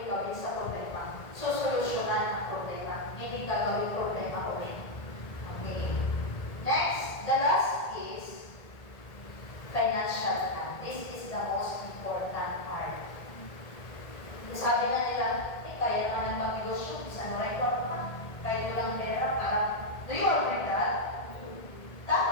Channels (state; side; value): late; right; 1.8 ms